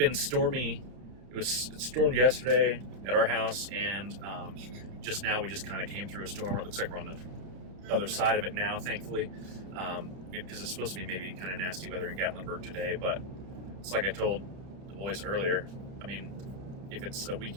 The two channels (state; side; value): late; left; 30 ms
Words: stormy. It stormed yesterday at our house, and just now we just kind of came through a storm. It looks like we're on the other side of it now, thankfully, because it's supposed to be maybe kind of nasty weather in Gatlinburg today. But it's like I told the boys earlier. I mean, if it's a